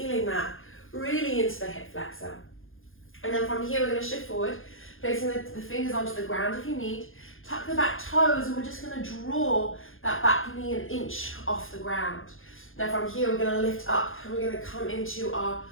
that really into the hip flexor. And then from here, we're going to shift forward, placing the fingers onto the ground if you need. Tuck the back toes, and we're just going to draw that back knee an inch off the ground. Now from here, we're going to lift up, and we're going to come into our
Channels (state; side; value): late; right; 0.59 ms